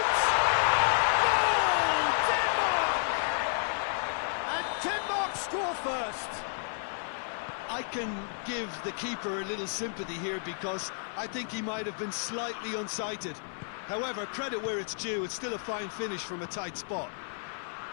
Goal! Denmark! And Denmark score first. I can give the keeper a little sympathy here because I think he might have been slightly unsighted. However, credit where it's due, it's still a fine finish from a tight spot.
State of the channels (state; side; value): silent; right; 57 dB below the other